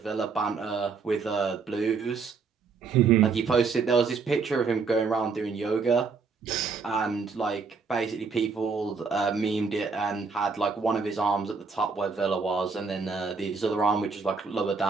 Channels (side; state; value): left; quieter; 5.0 dB